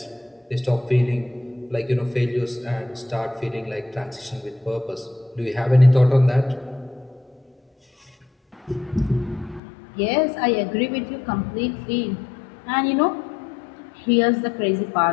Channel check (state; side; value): drops out; right; at 9.6 s